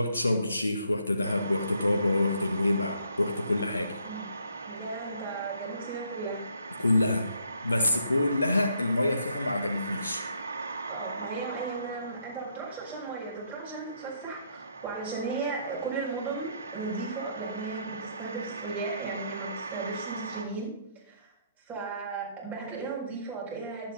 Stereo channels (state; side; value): inverted; both; correlation -0.70